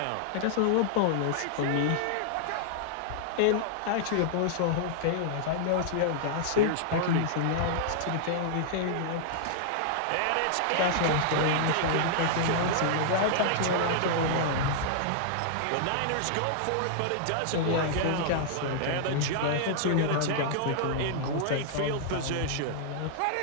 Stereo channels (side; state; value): both; different; correlation -0.01